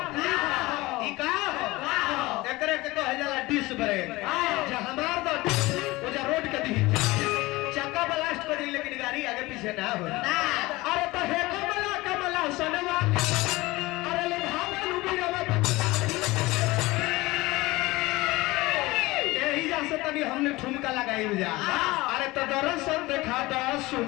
एकरे के कहे जाला डिश ब्रेक जे हमार दो ओ जे रोड के दी चक्का ब्लास्ट कर दी लेकिन गाड़ी आगे पीछे ना हो अरे तो हे कमला कमला सनवा अरे ले भावल उबिरवा यही जा से तनी हमने ठुमका लगाई जा अरे तो दर्शन देखा द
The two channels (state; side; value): quieter; right; 20.7 dB